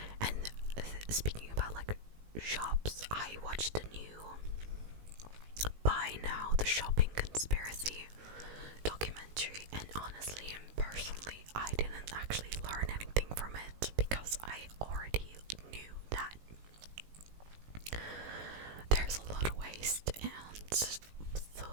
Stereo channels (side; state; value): left; late; 19 ms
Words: And speaking about like shops, I watched the new Buy Now, the Shopping Conspiracy documentary, and honestly and personally, I didn't actually learn anything from it because I already knew that there's a lot of waste, and the